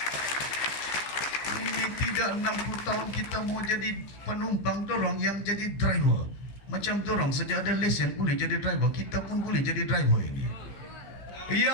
Ini tidak 60 tahun kita mau jadi penumpang, dorong yang jadi driver. Macam dorong sejak ada lesen boleh jadi driver, kita pun boleh jadi driver ini.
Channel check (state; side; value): late; right; 15 ms